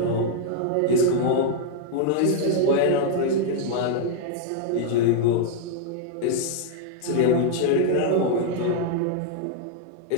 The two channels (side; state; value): both; different; correlation -0.01